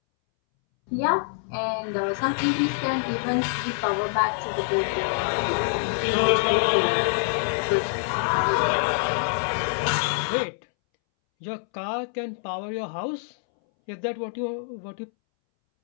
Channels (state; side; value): silent; right; 61 dB below the other